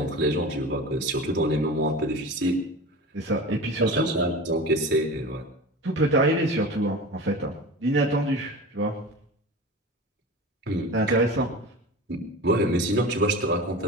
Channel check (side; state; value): both; normal; correlation 0.32